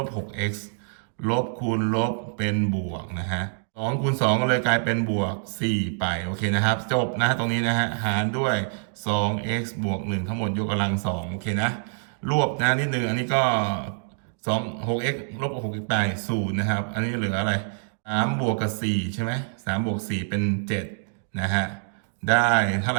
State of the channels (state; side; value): silent; left; digital silence